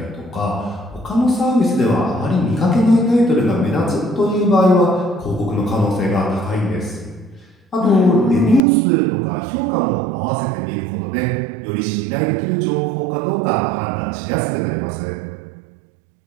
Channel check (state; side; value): drops out; left; at 8.6 s